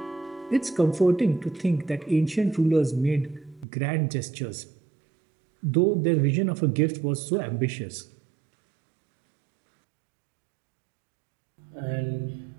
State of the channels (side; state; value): left; drops out; at 3.7 s